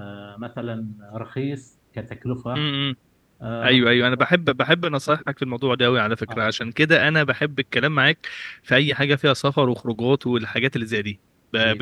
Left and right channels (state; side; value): identical; both; correlation 1.00